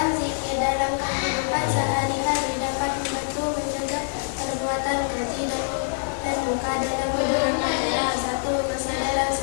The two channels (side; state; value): right; silent; digital silence